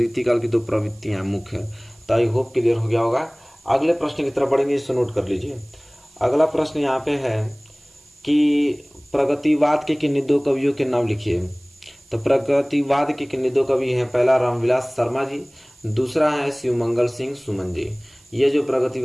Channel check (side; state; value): right; noise; hiss, 29 dB below the sound